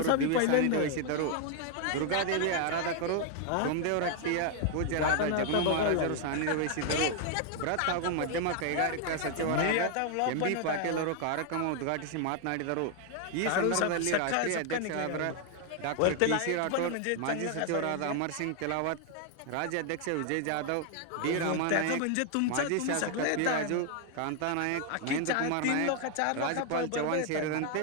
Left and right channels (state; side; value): different; both; correlation 0.00